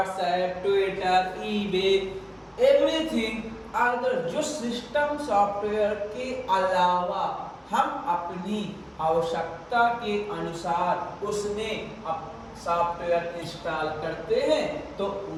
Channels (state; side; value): identical; both; correlation 1.00